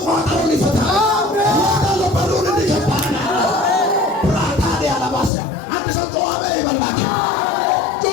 ቋጠሮን ይፈታል፣ ወርዳለሁ፣ በሩን እንዲገባል ያላባሰ አንድ ሰው ተዋበ ይበላክ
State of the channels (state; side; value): drops out; right; at 5.3 s